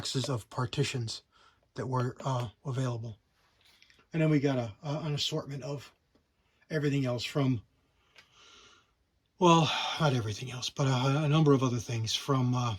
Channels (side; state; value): both; identical; correlation 1.00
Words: of partitions that were available. And then we got an assortment of everything else from, well, not everything else, but a number of other things from